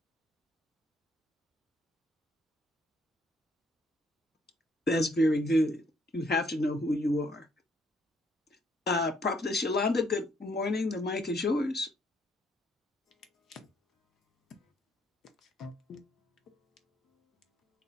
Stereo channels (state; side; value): normal; both; correlation 0.69